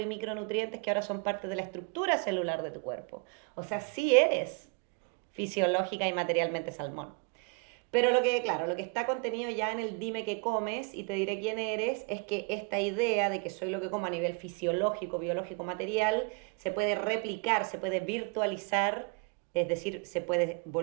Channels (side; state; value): left; quieter; 31.6 dB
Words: y micronutrientes que ahora son parte de la estructura celular de tu cuerpo. O sea, sí eres fisiológica y materialmente salmón. Pero lo que está contenido ya en el dime qué comes y te diré quién eres, es que esta idea de que soy lo que como a nivel fisiológico, biológico, material, se puede replicar, se puede virtualizar, es decir, se puede